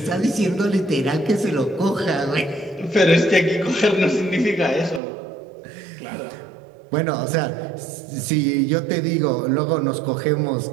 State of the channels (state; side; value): drops out; left; at 5.0 s